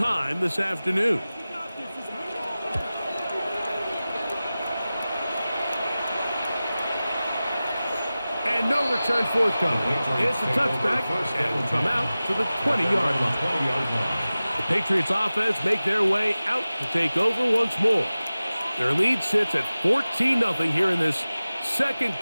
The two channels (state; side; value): inverted; both; correlation -0.96